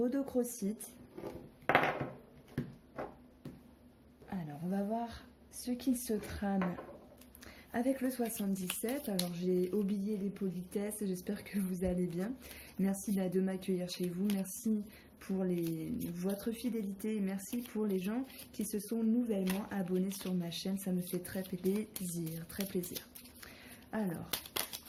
Alors, on va voir ce qu'il se trame avec le 77. Alors, j'ai oublié les politesses, j'espère que vous allez bien. Merci de m'accueillir chez vous, merci pour votre fidélité et merci pour les gens qui se sont nouvellement abonnés sur ma chaîne, ça me fait très plaisir, très plaisir. Alors,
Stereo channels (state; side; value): identical; both; correlation 1.00